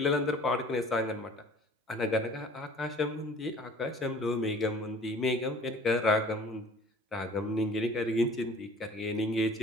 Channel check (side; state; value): both; normal; correlation 0.50